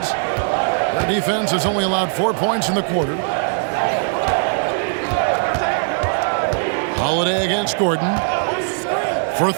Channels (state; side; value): silent; left; 65 dB below the other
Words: Their defense has only allowed 4 points in the quarter. Holiday against Gordon. For